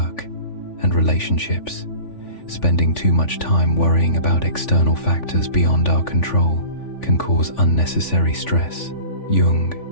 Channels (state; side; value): late; right; 3.5 ms